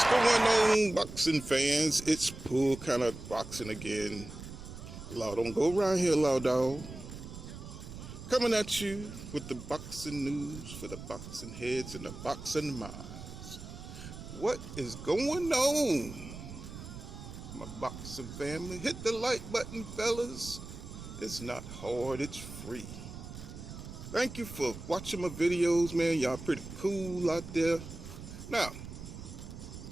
What's going on, boxing fans? It's Pull kind of boxing again. Law, don't go around here, law dog. Coming at you with the boxing news for the boxing heads and the boxing minds. What is going on, my boxing family? Hit the like button, fellas. It's not hard, it's free. Thank you for watching my videos, man. Y'all pretty cool out there. Now,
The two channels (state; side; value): noise; right; rumble, 12 dB below the sound